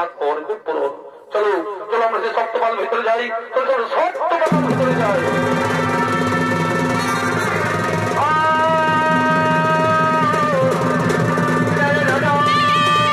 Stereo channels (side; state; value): both; identical; correlation 1.00